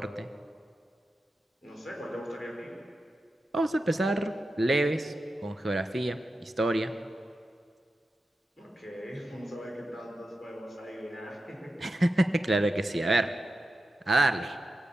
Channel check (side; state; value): both; normal; correlation 0.91